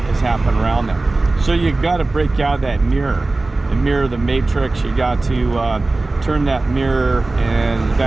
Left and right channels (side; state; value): left; quieter; 3.2 dB